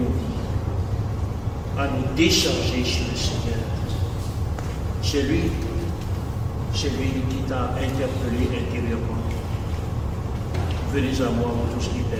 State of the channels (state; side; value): identical; both; correlation 1.00